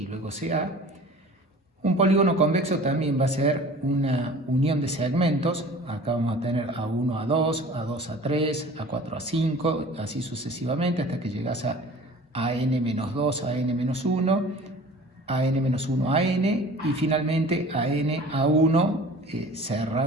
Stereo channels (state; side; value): normal; both; correlation 0.44